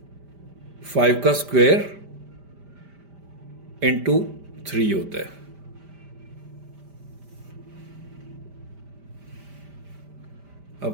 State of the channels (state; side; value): late; left; 5.0 ms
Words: 5 का स्क्वायर इंटू 3 होता है।